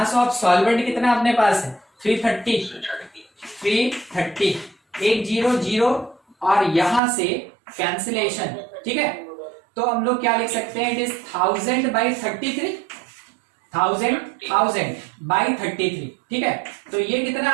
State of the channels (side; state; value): left; drops out; at 7.0 s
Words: of solvent कितना अपने पास है? 330। 330, 1 0 0 और यहां से कैंसिलेशन। ठीक है, तो हम लोग क्या लिख सकते हैं? It is 1000 by 33, 1000 by 33। ठीक है, तो ये कितना